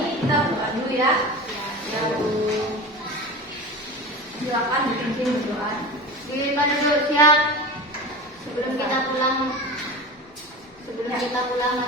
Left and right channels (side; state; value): both; normal; correlation 0.30